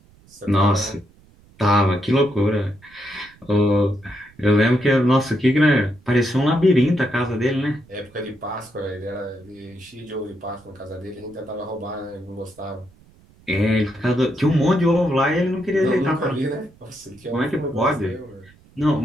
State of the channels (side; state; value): right; noise; rumble, 28 dB below the sound